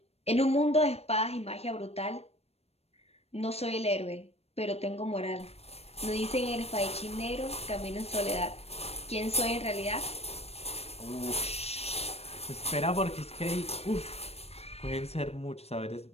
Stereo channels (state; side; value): late; right; 0.30 ms